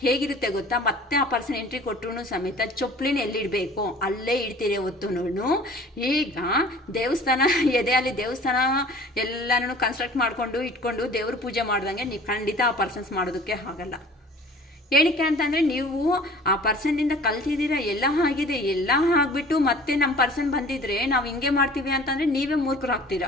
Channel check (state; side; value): normal; both; correlation 0.47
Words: ಹೇಗಿರುತ್ತೆ ಗೊತ್ತಾ, ಮತ್ತೆ ಆ ಪರ್ಸನ್ ಎಂಟ್ರಿ ಕೊಟ್ಟರು ಸಮೇತ ಚೊಪ್ಲಿನ ಎಲ್ಲಿಡಬೇಕು ಅಲ್ಲೇ ಇಡ್ತೀರಿ ಹೊತ್ತುನು. ಈಗ ದೇವಸ್ಥಾನ ಎದೆಯಲ್ಲಿ ದೇವಸ್ಥಾನ ಎಲ್ಲನೂ ಕನ್ಸ್ಟ್ರಕ್ಟ್ ಮಾಡಿಕೊಂಡು ಇಟ್ಕೊಂಡು ದೇವ್ರ ಪೂಜೆ ಮಾಡ್ದಂಗೆ ನೀವು ಖಂಡಿತ ಆ ಪರ್ಸನ್ಸ್ ಮಾಡೋದಕ್ಕೆ ಆಗಲ್ಲ. ಏನಕ್ಕೆ ಅಂತಂದರೆ ನೀವು ಆ ಪರ್ಸನ್ನಿಂದ ಕಲ್ತಿದ್ದೀರಾ, ಎಲ್ಲ ಆಗಿದೆ, ಎಲ್ಲ ಆಗಿಬಿಟ್ಟು ಮತ್ತೆ ನಮ್ಮ ಪರ್ಸನ್ ಬಂದಿದ್ರೆ ನಾವು ಹಿಂಗೆ ಮಾಡ್ತೀವಿ ಅಂತಂದರೆ ನೀವೇ